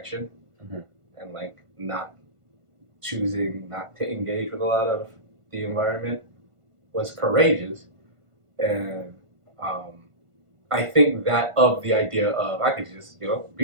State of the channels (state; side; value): late; left; 1.5 ms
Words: and like not choosing not to engage with a lot of the environment was courageous. And I think that of the idea of I could just,